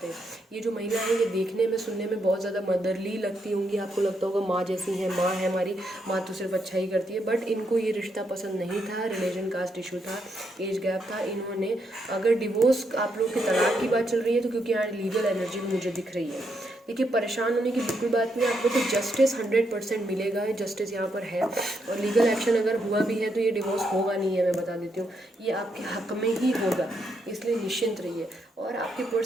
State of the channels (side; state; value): both; normal; correlation 0.79